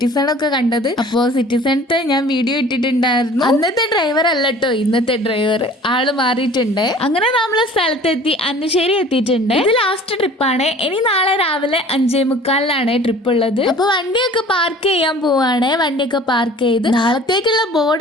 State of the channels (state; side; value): normal; both; correlation 0.46